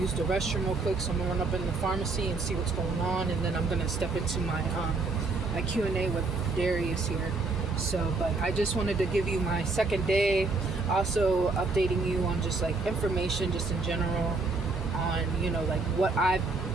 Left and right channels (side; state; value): left; quieter; 3.7 dB